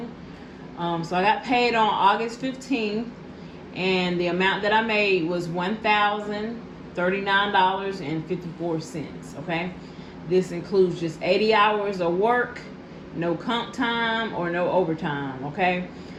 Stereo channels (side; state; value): both; identical; correlation 1.00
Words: So I got paid on August 15th and the amount that I made was $1,039.54. Okay, this includes just 80 hours of work, no comp time or no overtime. Okay,